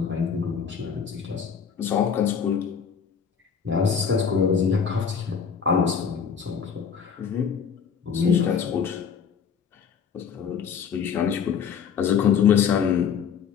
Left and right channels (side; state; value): right; quieter; 7.0 dB